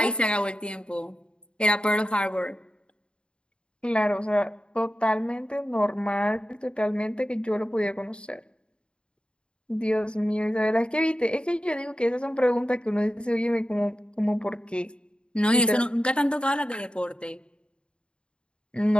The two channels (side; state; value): right; late; 0.054 ms